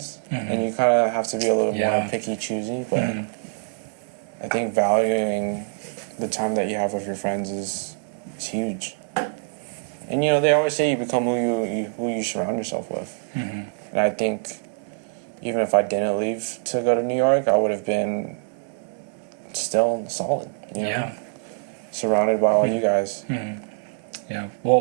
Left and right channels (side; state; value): left; silent; digital silence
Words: and you kind of have to be a little more picky, choosy. But I think valuing the time that you have with your friends is huge. And they always say you become who you surround yourself with. And I think even if I didn't leave to go to New York, I would have been still solid. Surrounded by all you guys. Yeah.